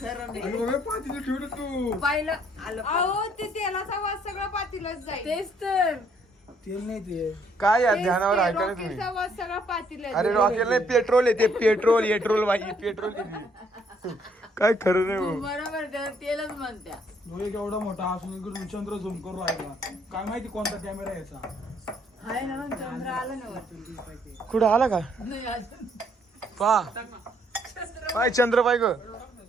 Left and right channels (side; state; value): both; normal; correlation 0.67